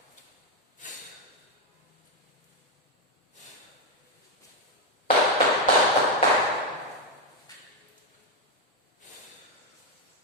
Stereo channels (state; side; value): normal; both; correlation 0.05